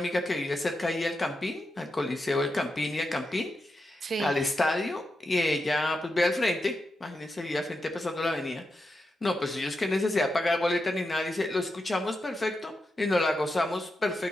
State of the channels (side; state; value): both; normal; correlation 0.87